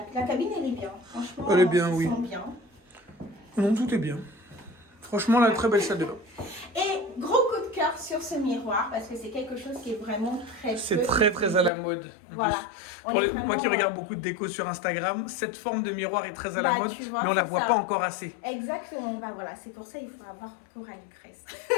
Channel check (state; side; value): drops out; right; at 11.7 s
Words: cabine, elle est bien. Franchement, elle est bien, on oui. sent bien. Non, tout est bien. Franchement, la très belle salle de bain. Et gros coup de cœur sur ce miroir, parce que c'est quelque chose qui est vraiment C'est très à la mode. Voilà. Moi qui regarde beaucoup de déco sur Instagram, cette forme de miroir est très à la mode, mais on la voit pas encore assez. Exactement, voilà, c'est pour ça qu'il faut avoir recours à l'ivresse.